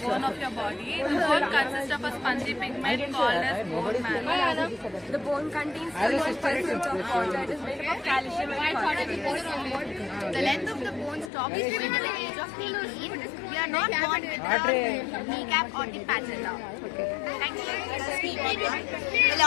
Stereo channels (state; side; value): drops out; right; at 11.3 s